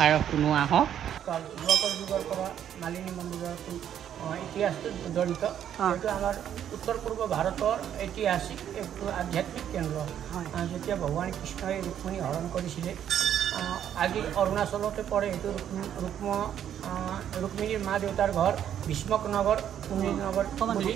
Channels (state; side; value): quieter; left; 9.9 dB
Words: শুনো আহক। যোৱাকৰ যুগৰ পৰা মালিনী মন্দিৰৰ ইতিহাসটো জড়িত। এইটো আমাৰ উত্তৰ পূৰ্ব ভাৰতৰ ঐতিহাসিক একটো আধ্যাত্মিক কেন্দ্ৰ। যেতিয়া ভগৱান কৃষ্ণই ৰুক্মিণী হৰণ কৰিছিলে, আজি অৰুণাচলতে পৰে। এইটো ৰুক্মিণীৰ মা দেউতাৰ ঘৰ ভীষ্মক নগৰ, কুমিৰ নগৰ বুলি